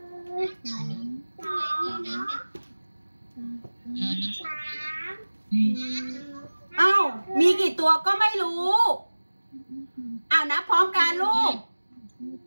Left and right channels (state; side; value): inverted; both; correlation -1.00